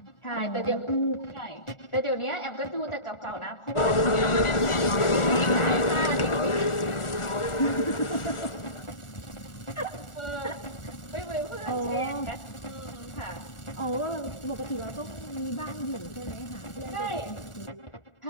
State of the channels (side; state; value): right; late; 1.4 ms